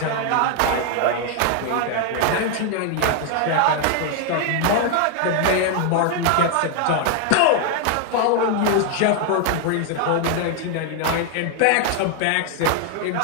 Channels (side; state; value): both; different; correlation 0.00